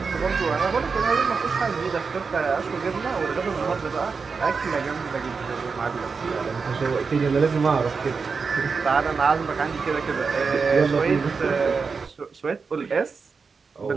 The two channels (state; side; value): quieter; left; 5.0 dB